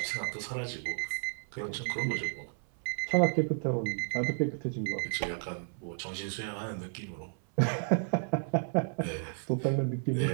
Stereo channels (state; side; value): silent; left; 56 dB below the other